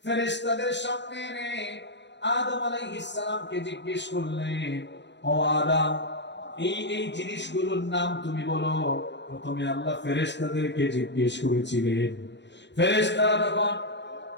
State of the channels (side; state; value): right; late; 0.52 ms